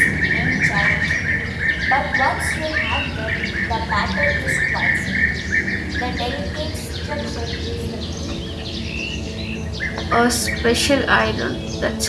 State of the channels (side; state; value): both; identical; correlation 1.00